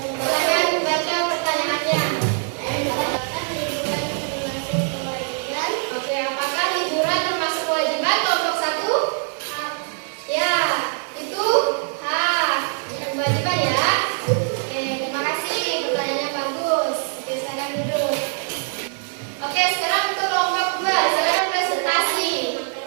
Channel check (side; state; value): left; silent; 55 dB below the other